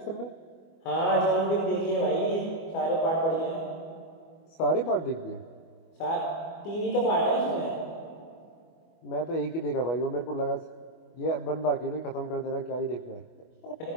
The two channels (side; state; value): right; late; 25 ms